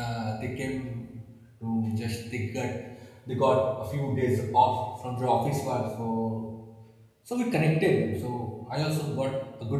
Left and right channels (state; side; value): identical; both; correlation 1.00